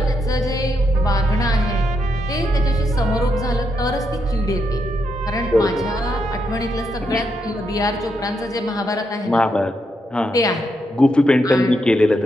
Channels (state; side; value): normal; both; correlation 0.81